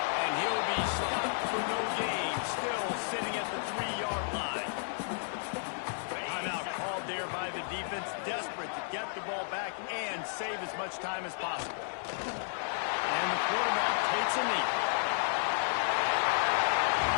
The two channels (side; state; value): right; silent; 56 dB below the other